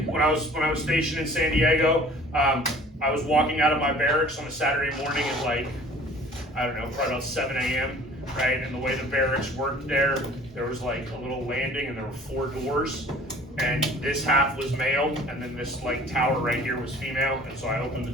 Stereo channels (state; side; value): normal; both; correlation 0.49